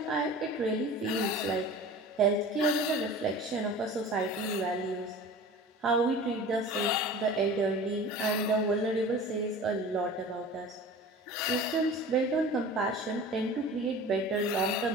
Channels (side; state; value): both; normal; correlation 0.39